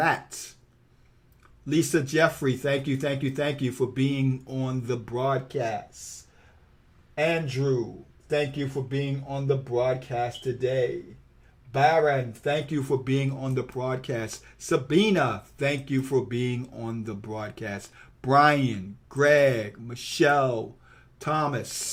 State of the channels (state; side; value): identical; both; correlation 1.00